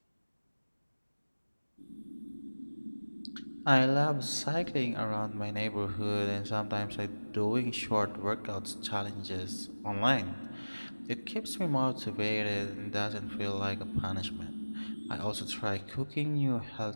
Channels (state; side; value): inverted; both; correlation -1.00